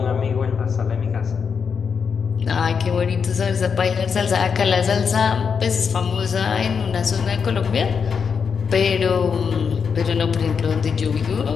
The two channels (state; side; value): quieter; right; 6.2 dB